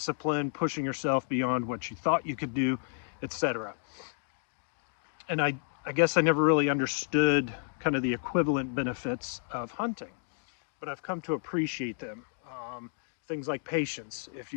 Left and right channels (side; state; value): right; silent; digital silence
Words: pushing yourself beyond what you thought you could do, etc. And I guess I never really understood kind of the equivalent benefits of hunting, but I've come to appreciate them. Things like patience. If